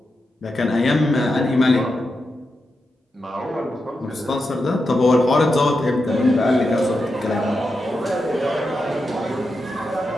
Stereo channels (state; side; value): normal; both; correlation 0.87